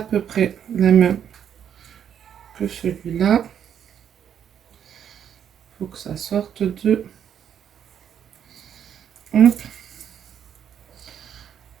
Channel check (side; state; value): left; quieter; 8.9 dB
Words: peu près la même que celui-là. Il faut que ça sorte de... Hop.